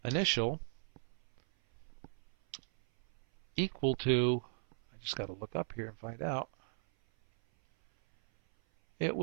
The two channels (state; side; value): silent; left; 53 dB below the other